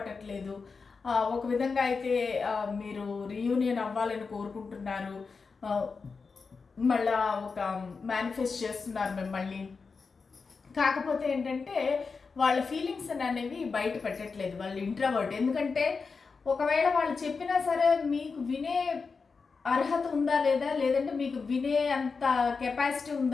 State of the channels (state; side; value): quieter; right; 4.8 dB